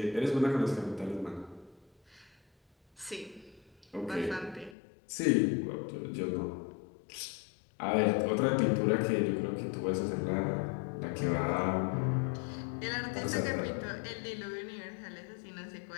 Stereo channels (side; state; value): right; drops out; at 4.8 s